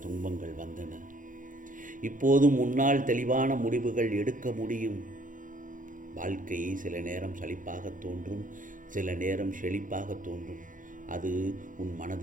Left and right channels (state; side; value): late; left; 0.38 ms